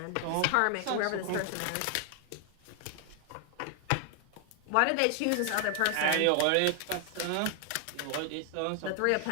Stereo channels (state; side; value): different; both; correlation 0.00